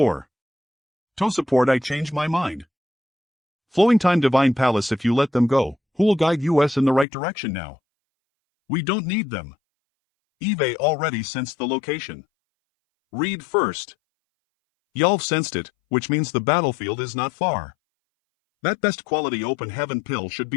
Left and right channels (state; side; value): drops out; right; at 7.1 s